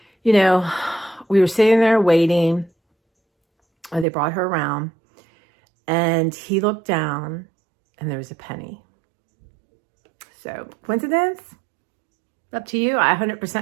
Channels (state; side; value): drops out; left; at 4.0 s